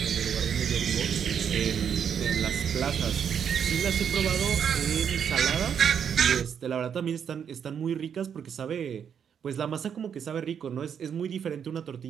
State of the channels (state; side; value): quieter; left; 7.9 dB